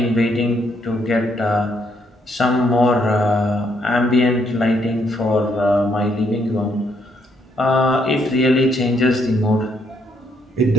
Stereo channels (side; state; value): both; normal; correlation 0.72